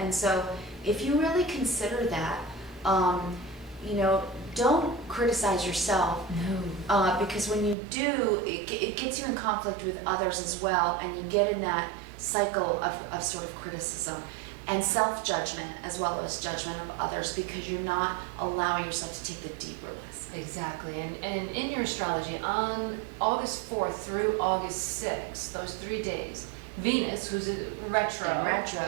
so, if you really consider that, don't criticize yourself, No. because when you do, it gets you in conflict with others as well, and you get in that cycle of sort of criticism and self-judgment as well as judgment of others, because you're not allowing yourself to take the deeper lesson. Exactly. And in your astrology, on August 4th through August 6th, those 3 days, Venus, who's a retro, In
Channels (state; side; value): drops out; left; at 7.8 s